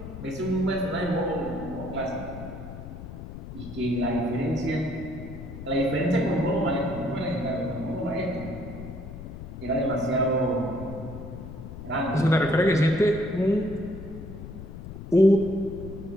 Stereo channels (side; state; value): left; noise; rumble, 11 dB below the sound